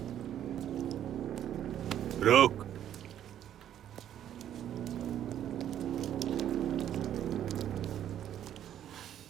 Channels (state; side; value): quieter; left; 10.7 dB